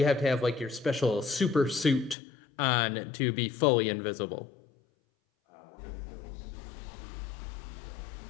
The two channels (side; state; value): right; drops out; at 2.1 s